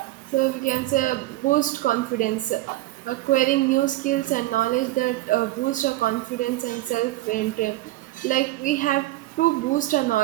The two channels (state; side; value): quieter; left; 17.2 dB